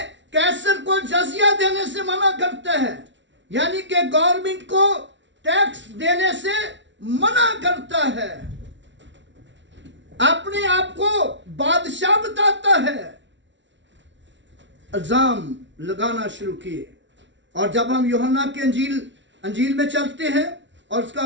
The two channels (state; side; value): late; left; 0.53 ms